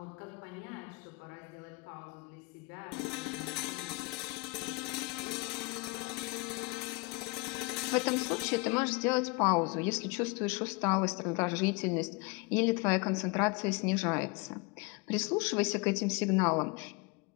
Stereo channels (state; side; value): quieter; right; 27.6 dB